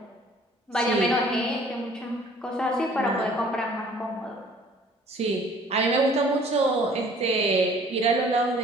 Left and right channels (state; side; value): normal; both; correlation 0.54